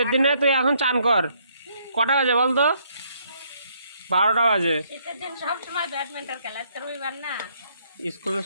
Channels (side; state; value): both; inverted; correlation -0.69